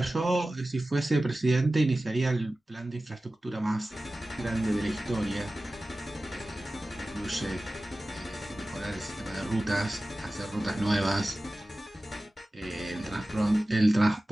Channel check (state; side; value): normal; both; correlation 0.96